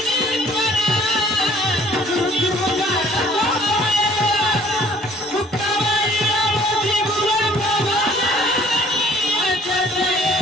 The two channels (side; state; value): both; normal; correlation 0.55